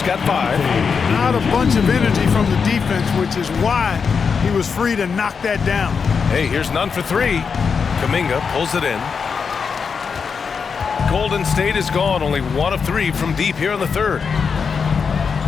got 5. Not a bunch of energy from the defense, which is why he was free to knock that down. Hey, here's Nunn for 3. Kuminga pulls it in. Golden State is gone, only 1 of 3 from deep here in the third.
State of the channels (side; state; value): right; quieter; 5.8 dB